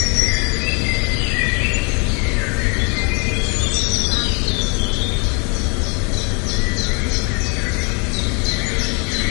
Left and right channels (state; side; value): quieter; right; 34.7 dB